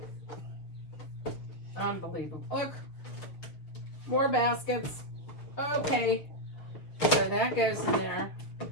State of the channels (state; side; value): late; right; 6.7 ms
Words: Unbelievable. Look. More baskets. Okay. So that goes in there.